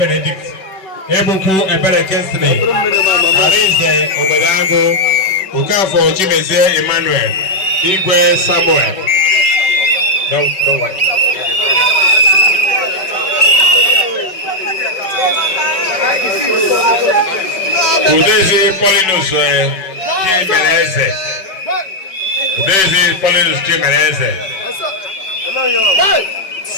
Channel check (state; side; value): late; right; 5.3 ms